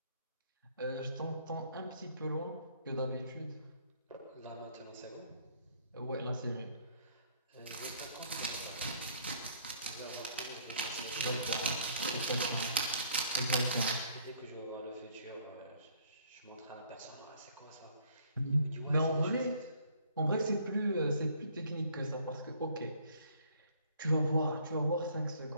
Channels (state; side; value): inverted; both; correlation -0.62